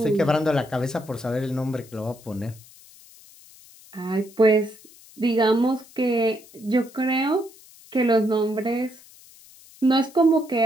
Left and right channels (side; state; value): left; noise; hiss, 23 dB below the sound